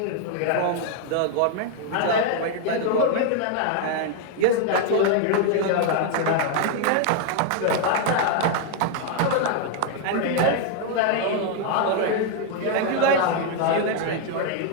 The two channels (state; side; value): different; both; correlation 0.00